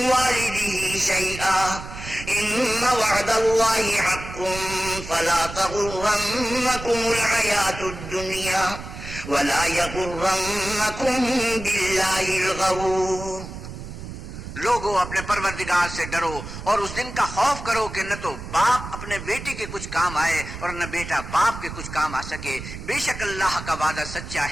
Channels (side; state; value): right; noise; rumble, 10 dB below the sound